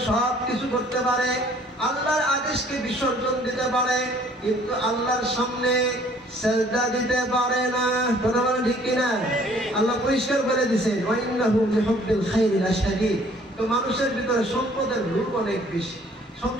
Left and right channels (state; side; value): normal; both; correlation 0.57